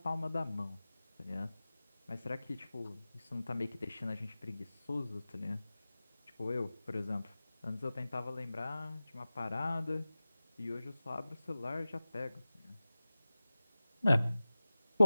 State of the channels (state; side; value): inverted; both; correlation -0.97